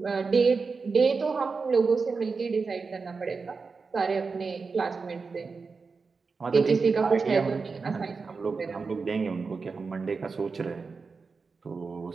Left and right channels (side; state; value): left; quieter; 4.7 dB